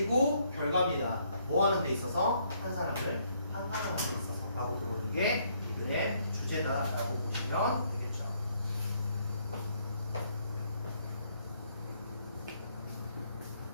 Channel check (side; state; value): both; inverted; correlation -0.69